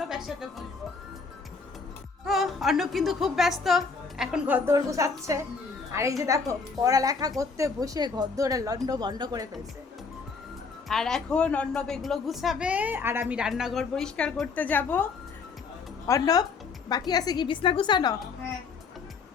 একসাথে বসবো। তো অর্ণব কিন্তু খুব ব্যস্ত, এখন ঘর দৌড় গুছাচ্ছে। আর এই যে দেখো পড়ালেখা করতে বসে ঘর দৌড়ে লন্ড বন্ড করে ফেলছে। আর এখন অর্ণব এগুলো গুছাবে, আর আমি রান্নাঘর পরিষ্কার করতে যাব। অর্ণব বাকি আছে কি বিছনা গুছানো? হ্যাঁ।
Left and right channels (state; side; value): quieter; right; 4.8 dB